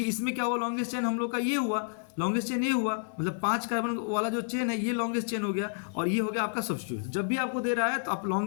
इसमें क्या हुआ, लॉन्गेस्ट चेन हम लोग का ये हुआ, लॉन्गेस्ट चेन ये हुआ, मतलब 5 कार्बन वाला जो चेन है ये लॉन्गेस्ट चेन हो गया, और ये हो गया आपका सब्स्टिट्यूट। जब भी आपको दे रहा है तो आप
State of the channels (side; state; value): right; silent; 58 dB below the other